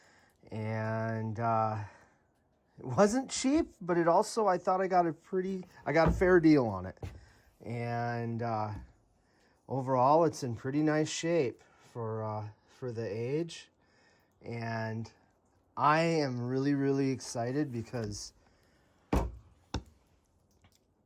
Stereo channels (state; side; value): identical; both; correlation 1.00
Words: And it wasn't cheap, but it also, I thought I got a fair deal on it. And overall, it's in pretty nice shape for the age. And I am really, really excited because